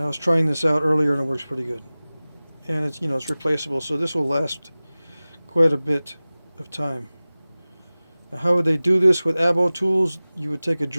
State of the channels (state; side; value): inverted; both; correlation -0.98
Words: was trying this out earlier, and it works pretty good. And it's it's replaceable, so this will last quite a bit of time. Now, how would they do this with abo tools? You would take a